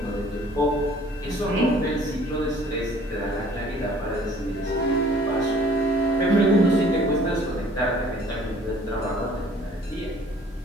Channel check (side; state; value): both; normal; correlation 0.54